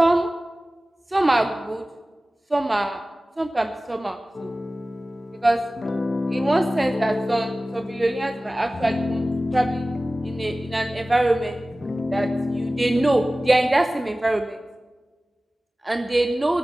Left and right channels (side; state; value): both; normal; correlation 0.97